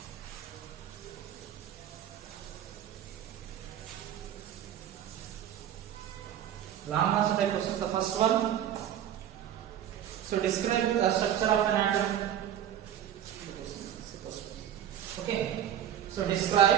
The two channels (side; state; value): left; quieter; 10.5 dB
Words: Long answer type questions. The first one. So describe the structure of an atom. Okay. So